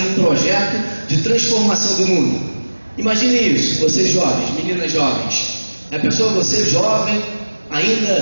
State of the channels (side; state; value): both; inverted; correlation -1.00